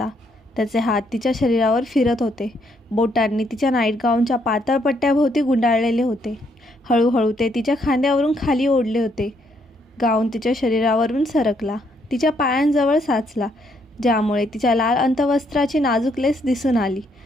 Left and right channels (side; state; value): both; normal; correlation 0.72